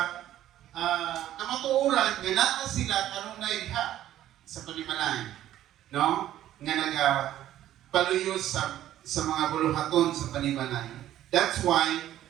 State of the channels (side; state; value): left; quieter; 12.7 dB